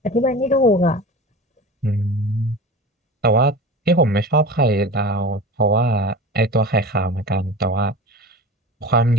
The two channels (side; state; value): both; normal; correlation 0.33